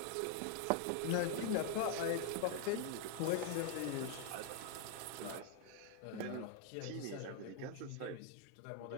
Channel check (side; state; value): both; different; correlation 0.00